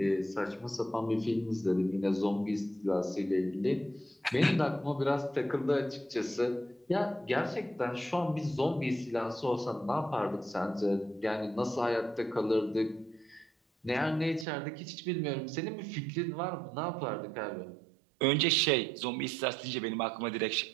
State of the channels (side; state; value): left; drops out; at 14.5 s